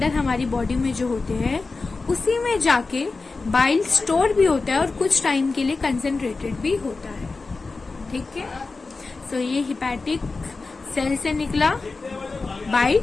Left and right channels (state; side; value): quieter; right; 3.9 dB